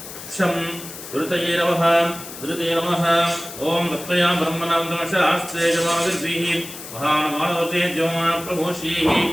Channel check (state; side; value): noise; left; hiss, 12 dB below the sound